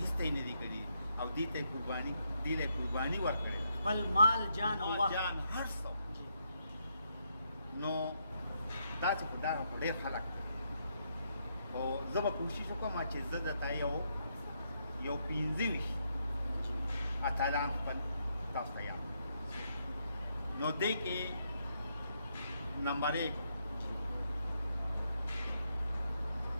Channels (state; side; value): inverted; both; correlation -0.77